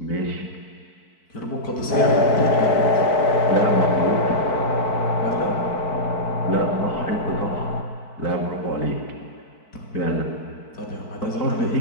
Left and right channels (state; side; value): late; right; 4.5 ms